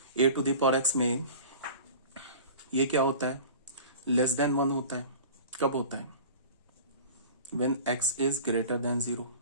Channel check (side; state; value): both; inverted; correlation -0.39